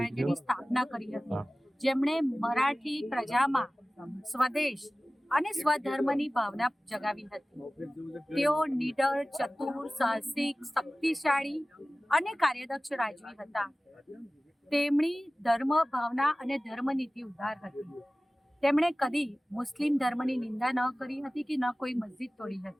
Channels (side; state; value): both; normal; correlation 0.97